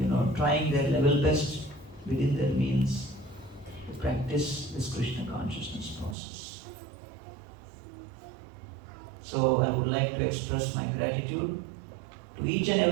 trying their level best within their means to practice this Krishna consciousness process. So I would like to express my gratitude to each and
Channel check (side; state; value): left; drops out; at 6.2 s